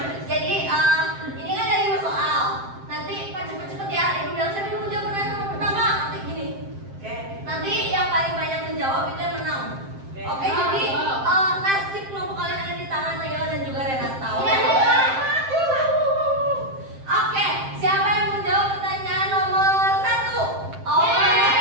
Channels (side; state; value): left; late; 7.6 ms